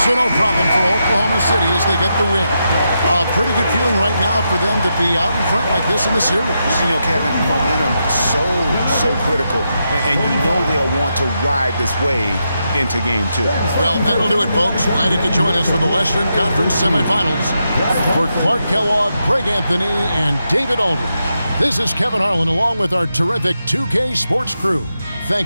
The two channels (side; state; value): both; inverted; correlation -0.85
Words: So no problem for Oklahoma City as they get the win. A pretty good feeling right now for them to be out in front like this in the series. You know, Kevin, momentum so critical. And you know they'll want to ride this wave into Game 2. Well, that'll do it, folks. Glad you could join us for the Western Conference semifinals. For Clark Kellogg, Greg Anthony, and David Aldridge, this is Kevin Harlan along with our terrific 2K Sports crew,